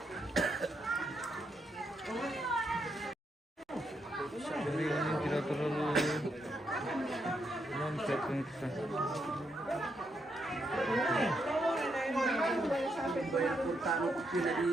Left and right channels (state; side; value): normal; both; correlation 0.79